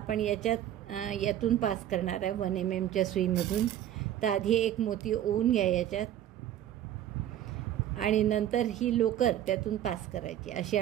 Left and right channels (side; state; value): left; quieter; 11.5 dB